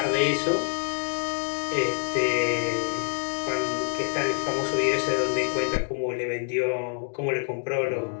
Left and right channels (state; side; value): silent; right; digital silence